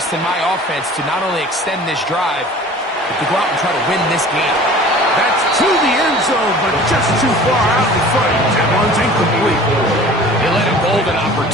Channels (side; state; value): both; normal; correlation 0.44